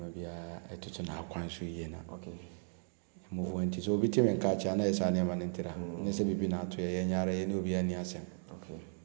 bia etutu na akwan so yie na okay move nti so obi teme nka cha na esa ne ma ntira ne se bibi na ato ye nyara ye ne obi ani asem okay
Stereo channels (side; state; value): left; silent; 54 dB below the other